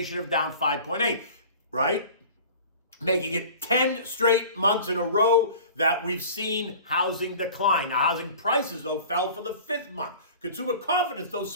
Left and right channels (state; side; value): inverted; both; correlation -0.42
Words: of down 5.8%, right? Making it 10 straight months in a row that we've seen housing decline. Now, housing prices, though, fell for the fifth month. Consumer confidence, though,